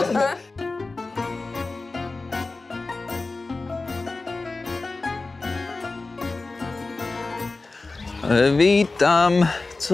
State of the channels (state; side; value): quieter; right; 3.5 dB